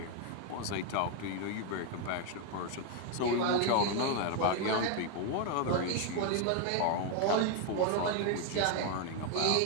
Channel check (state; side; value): different; both; correlation 0.01